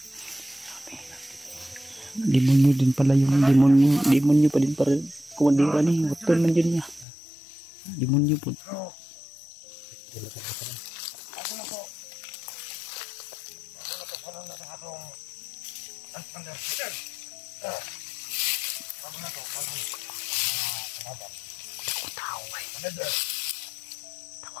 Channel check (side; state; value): right; drops out; at 7.1 s